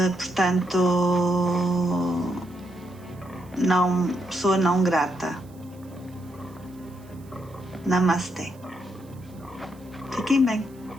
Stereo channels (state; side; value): noise; right; hiss, 28 dB below the sound